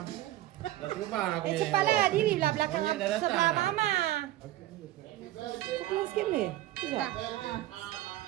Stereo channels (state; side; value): quieter; left; 14.9 dB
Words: Dah terbang aku ni. Cepatlah diri belah belakang Banyak dah datang. sebelah mama. Pulang sikit boleh? Tidak.